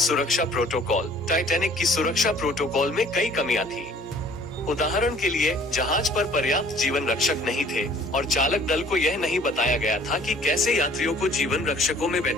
प्रोटोकॉल। टाइटैनिक की सुरक्षा प्रोटोकॉल में कई कमियां थी। उदाहरण के लिए, जहाज पर पर्याप्त जीवन रक्षक नहीं थे और चालक दल को यह नहीं बताया गया था कि कैसे यात्रियों को जीवन रक्षकों में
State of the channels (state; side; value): normal; both; correlation 0.54